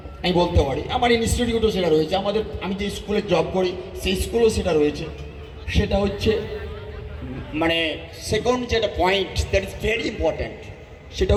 আমি বলতে পারি। আমার ইনস্টিটিউটও সেটা রয়েছে, আমাদের আমি যে স্কুলে জব করি সেই স্কুলেও সেটা রয়েছে। সেটা হচ্ছে মানে সেকেন্ড যেটা point that is very important, সেটা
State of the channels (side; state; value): both; identical; correlation 1.00